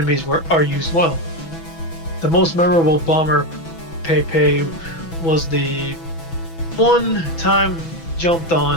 are used well. The most memorable bomber Pepe was the one time jumped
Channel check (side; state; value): right; late; 6.1 ms